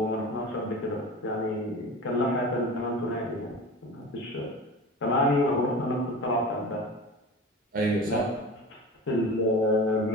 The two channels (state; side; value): normal; both; correlation 0.33